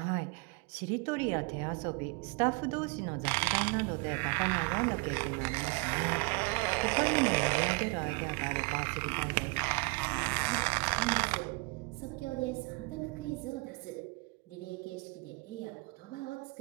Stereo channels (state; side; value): quieter; left; 28.9 dB